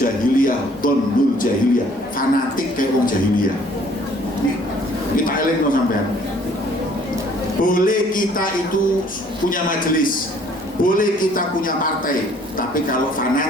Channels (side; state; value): both; normal; correlation 0.58